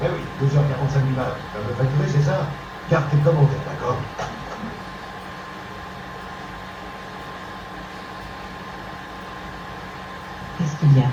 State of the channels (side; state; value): both; identical; correlation 1.00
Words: oui, 12h45 minutes. Tu vas me facturer, c'est ça? Garde tes commentaires, d'accord? Qu'est-ce qu'il y a?